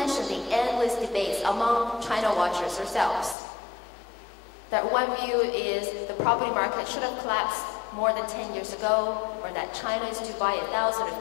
the endless debates among China watchers themselves. That one view is the property market should have collapsed more than 10 years ago, or that China is to buy 1,000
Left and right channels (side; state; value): right; drops out; at 3.4 s